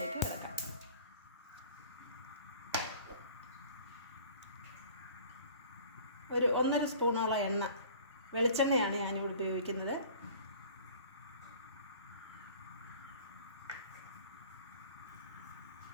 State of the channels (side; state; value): both; inverted; correlation -0.46